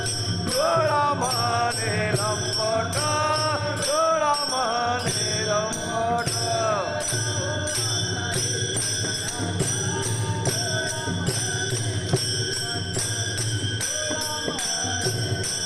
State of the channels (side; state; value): both; identical; correlation 1.00